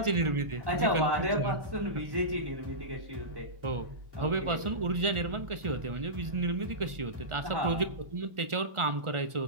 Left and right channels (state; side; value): late; left; 1.4 ms